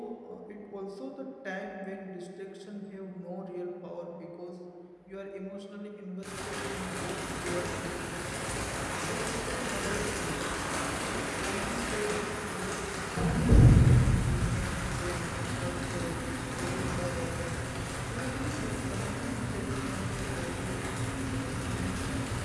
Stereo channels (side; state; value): both; identical; correlation 1.00